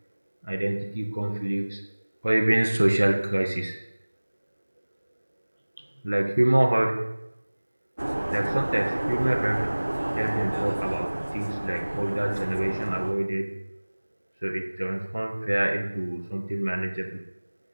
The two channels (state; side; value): inverted; both; correlation -1.00